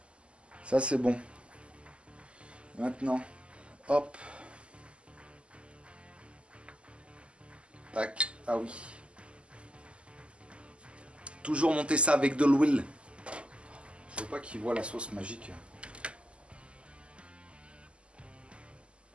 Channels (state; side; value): late; left; 0.054 ms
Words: Ça c'est bon. Maintenant, hop. Tac. Ah oui. Toujours monter ça avec de l'huile. Je veux pas qu'il voit la sauce magique.